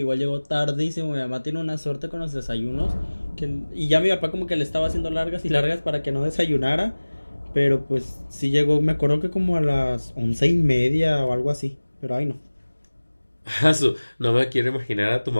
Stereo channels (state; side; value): inverted; both; correlation -1.00